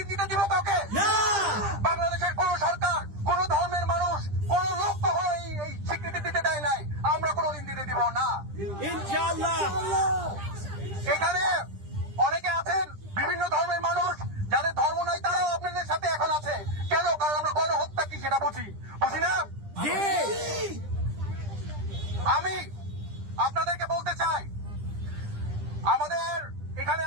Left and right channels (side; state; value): left; late; 10 ms